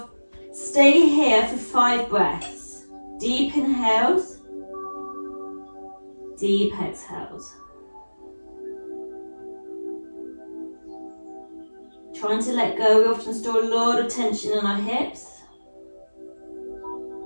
stay here for 5 breaths. Deep inhales, deep exhales. Trying to let go, we often store a lot of tension in our hips.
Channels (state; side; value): inverted; both; correlation -1.00